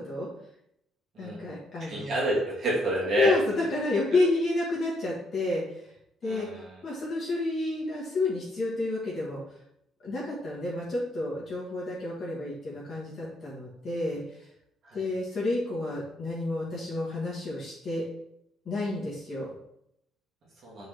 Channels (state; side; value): normal; both; correlation 0.73